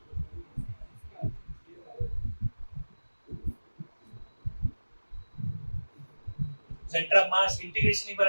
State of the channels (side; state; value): both; inverted; correlation -1.00